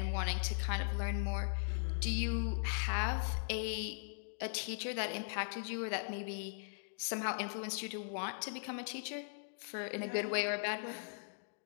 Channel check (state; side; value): silent; right; digital silence